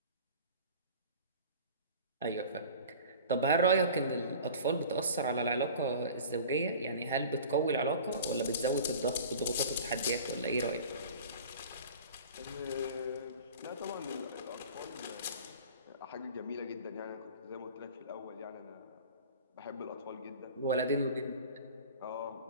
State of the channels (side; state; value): both; inverted; correlation -0.41